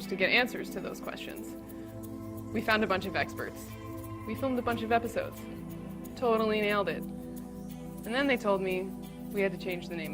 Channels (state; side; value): identical; both; correlation 1.00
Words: to get answers to those questions. We found a bunch of experts. We filmed a bunch of episodes. Totally nailed it. And then they told me we had to change the